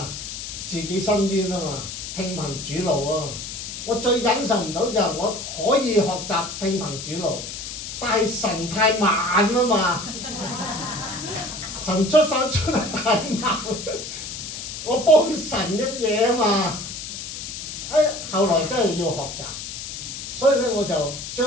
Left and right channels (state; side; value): noise; left; hiss, 8 dB below the sound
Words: 自己伸冤啊嘛，聽憑主怒啊！我最忍受唔到就係我可以學習聽憑主怒，但係神太慢啊嘛，神出手出得太慢，我幫神一嘢啊嘛。後來真係要學習，所以咧我就